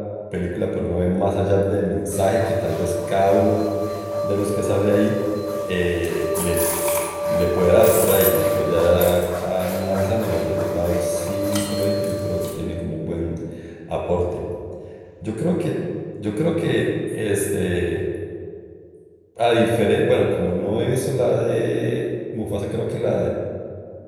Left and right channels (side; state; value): both; identical; correlation 1.00